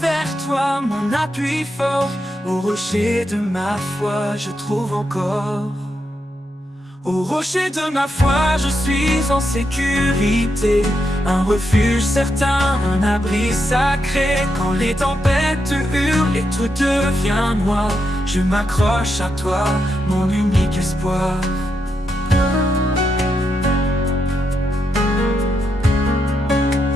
toi, mon appui fort. Au rocher de ma foi, je trouve encore. Au rocher de ma foi, je suis en sécurité. Un refuge certain, un abri sacré. Quand les tempêtes hurlent et tout devient noir, je m'accroche à toi, mon unique espoir.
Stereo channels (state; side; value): normal; both; correlation 0.83